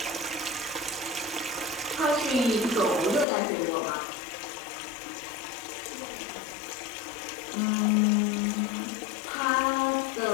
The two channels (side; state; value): right; drops out; at 3.2 s